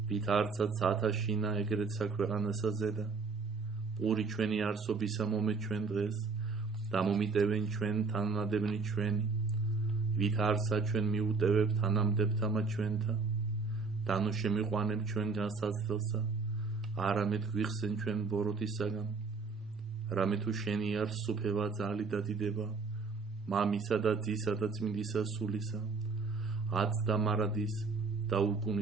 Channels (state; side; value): quieter; left; 4.5 dB